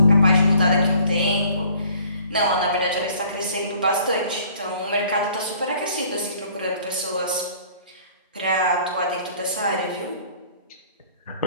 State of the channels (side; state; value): both; inverted; correlation -0.55